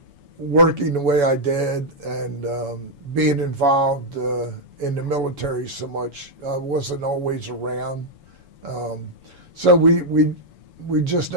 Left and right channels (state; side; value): late; left; 7.0 ms